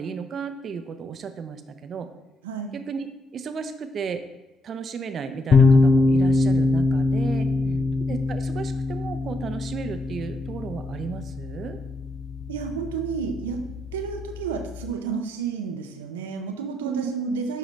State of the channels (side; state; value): both; normal; correlation 0.78